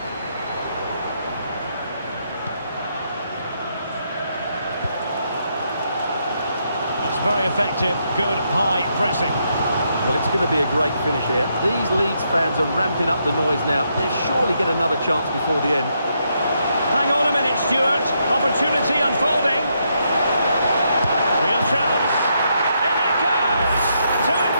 That's very effective. Good high pressing. Well, it's going to be a great finish here. These Leeds fans are ramping up the noise now. They'll surely get another chance before the end. Hang on a minute, Stuart. Opportunity unfolding. Real chance. In it goes! To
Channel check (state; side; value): inverted; both; correlation -0.78